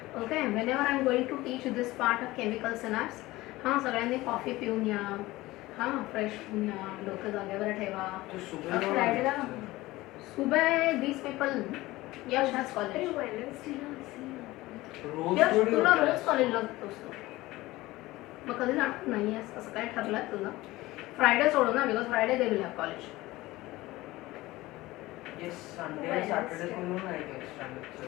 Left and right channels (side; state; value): right; quieter; 18.8 dB